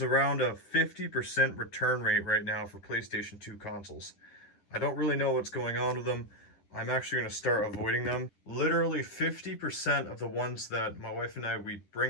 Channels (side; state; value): right; late; 10 ms